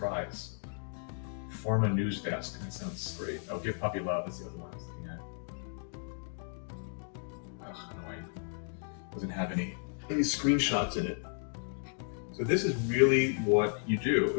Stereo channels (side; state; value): right; silent; 55 dB below the other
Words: Form a news desk. That sounds great. Oh, Give Puppy Love. That's the other one I was looking at. Ugh, annoying. Doesn't have any screenshots in it. So this is really what you do